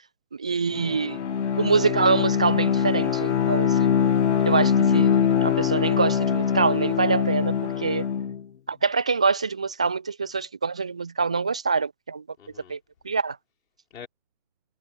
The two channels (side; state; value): both; inverted; correlation -0.49